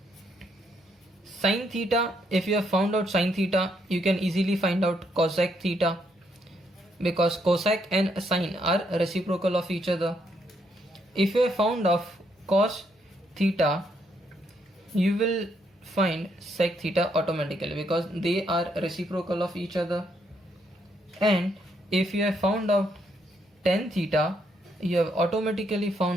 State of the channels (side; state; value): both; normal; correlation 0.74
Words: sine theta, if you have found out sine theta, you can easily find out cosec theta, because cosec and sine are reciprocal of each other. If you have found of cos theta, you will find sec theta automatically because they are reciprocal of each other. And if you have found out tan theta, you have automatically